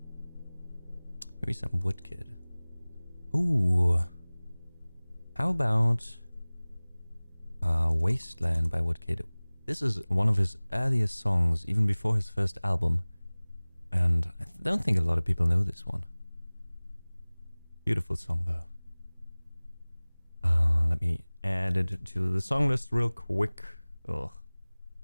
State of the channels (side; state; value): both; inverted; correlation -1.00